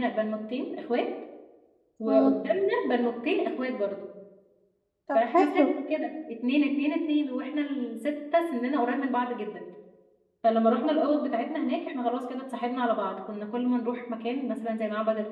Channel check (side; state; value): both; identical; correlation 1.00